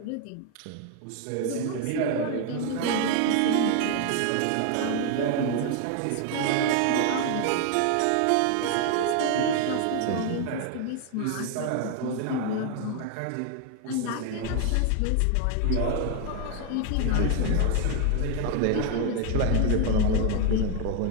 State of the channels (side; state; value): both; different; correlation 0.01